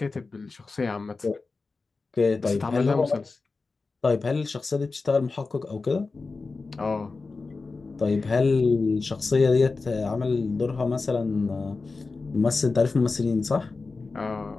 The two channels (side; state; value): right; quieter; 4.0 dB